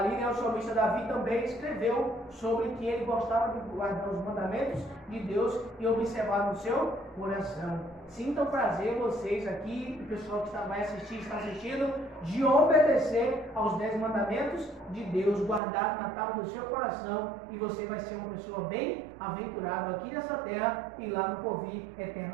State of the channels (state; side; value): drops out; left; at 15.6 s